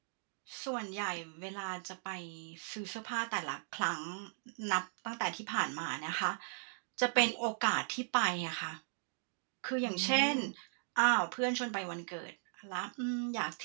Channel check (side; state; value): left; silent; digital silence